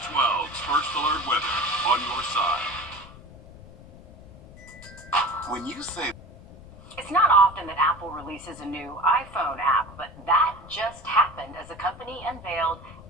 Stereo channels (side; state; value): left; noise; rumble, 19 dB below the sound